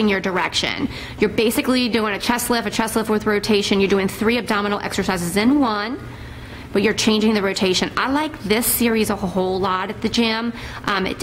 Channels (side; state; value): both; identical; correlation 1.00